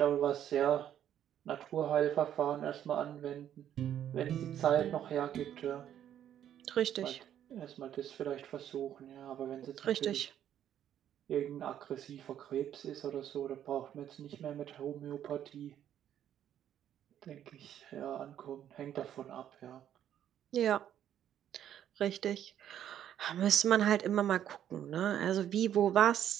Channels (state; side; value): quieter; left; 10.4 dB